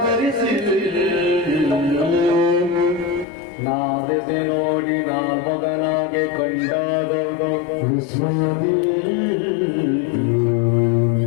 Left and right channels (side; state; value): right; drops out; at 3.2 s